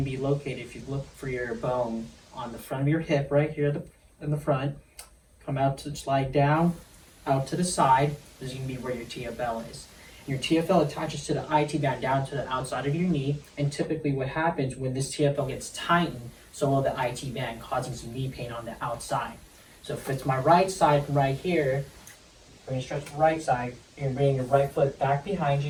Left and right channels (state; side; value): identical; both; correlation 1.00